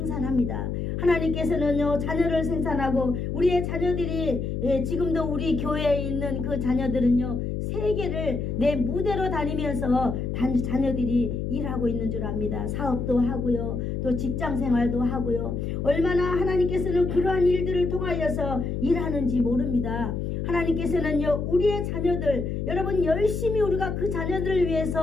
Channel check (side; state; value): left; noise; hum, 3 dB below the sound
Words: 하나님께서는요 자녀를 생산하고 우리의 자녀들이 지금도 우리 교회에 있는 그 자녀들은요 세계를 내 무대로 다니면서 자녀들이 일하고 있는 줄 압니다. 사업도 하고요 또 직장생활도 하고요 얼마나 하나님께서는 그러한 일들을 통하여서 일하는지 모릅니다. 하나님께서는요 우리의 자녀들 여러분 열심히 우리가 그 자녀들을